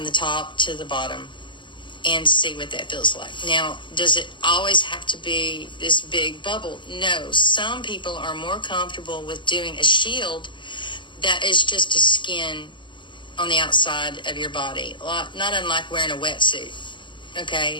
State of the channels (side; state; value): right; late; 0.23 ms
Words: the top to the bottom and see what that feels like. Now, does it always have to be this big bubble? No. Some people are more comfortable with doing a shield that is just a skin on the outside of your body, not unlike wearing a wetsuit, okay,